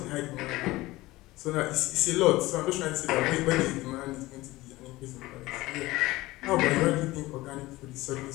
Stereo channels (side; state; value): right; quieter; 19.0 dB